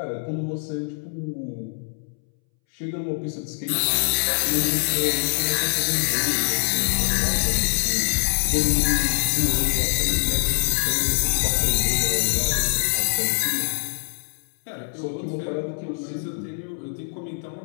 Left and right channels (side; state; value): right; silent; 63 dB below the other